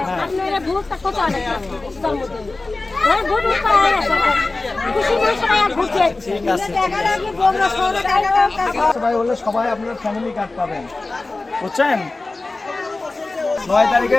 আপনারা ভোটটা কত অনেক ভোট পাওয়া গেছে, খুশি মনে সবাই আর ভোট দিয়েছে। ঠিক আছে, সবাই হলে সবাই আপনার ফ্যামিলি কার্ড পাবেন, বুঝছেন? 9 তারিখে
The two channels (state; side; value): quieter; right; 3.3 dB